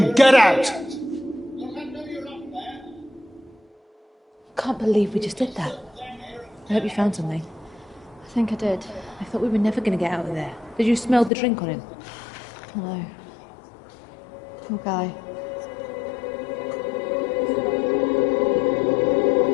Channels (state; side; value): drops out; right; at 11.3 s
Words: get out. Can't believe we just did that. I hope you found something. I think I did. I thought we were never going to get out of there. Did you smell the drink on him? No. Poor guy.